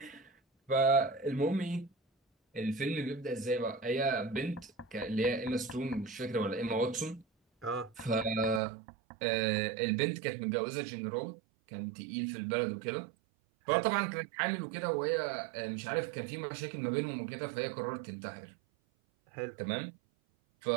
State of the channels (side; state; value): left; drops out; at 8.6 s